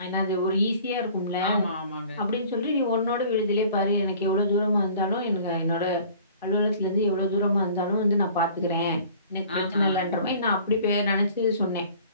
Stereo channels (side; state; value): both; inverted; correlation -0.49